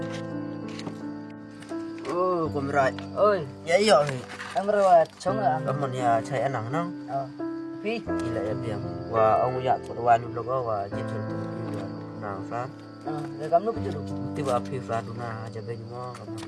Oh, kumrai. Oi, ya iya. Ang rawat chonga. Kamu ni cai anang nang. Pi, ila ya biang. Wa ông ya terdoa ni logo wa jitu tu nang san. Để kamu kerja dulu. Tiba api Fraduna aja baju mau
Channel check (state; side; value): identical; both; correlation 1.00